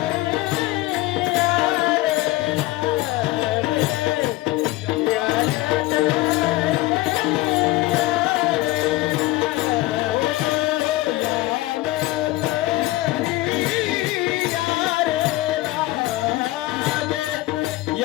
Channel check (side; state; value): right; quieter; 18.3 dB